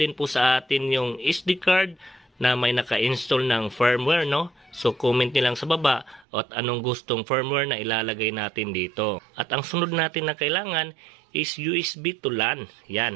po sa atin yung SD card na may naka-install ng firmware So comment nyo lang sa baba at anong gustong firmware na ilalagay natin dito. At ang sunod natin na kailangan is USB to LAN.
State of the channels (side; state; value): left; drops out; at 6.2 s